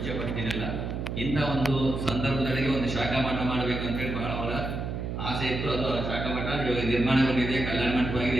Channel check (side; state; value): right; noise; hum, 4 dB below the sound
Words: ಪಡ್ತೀನಿಲ್ಲ. ಇಂಥ ಒಂದು ಸಂದರ್ಭದೊಳಗೆ ಒಂದು ಶಾಖಾ ಮಠ ಮಾಡಬೇಕು ಅಂತ ಹೇಳಿ ಬಹಳ ಅವರ ಆಸೆ ಇತ್ತು. ಅದು ಶಾಖಾ ಮಠ ಇವಾಗ ನಿರ್ಮಾಣಗೊಂಡಿದೆ, ಕಲ್ಯಾಣ ಮಂಟಪವಾಗಿದೆ.